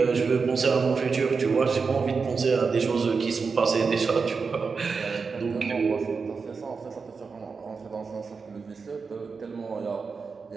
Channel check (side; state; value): left; quieter; 5.0 dB